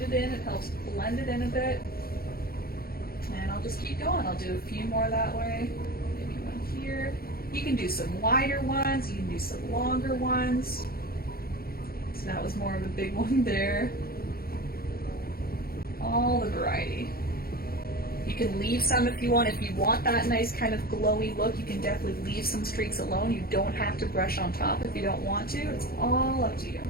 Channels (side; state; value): right; late; 0.44 ms